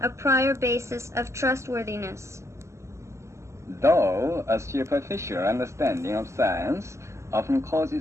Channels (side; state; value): left; late; 0.14 ms